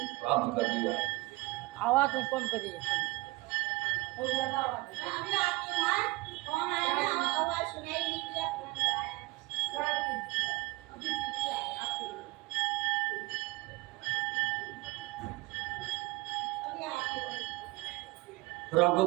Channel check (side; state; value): left; quieter; 21.6 dB